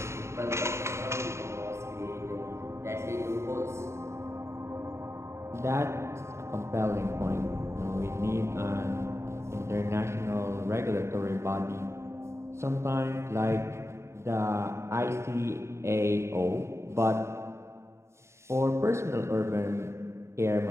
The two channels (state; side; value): late; left; 0.13 ms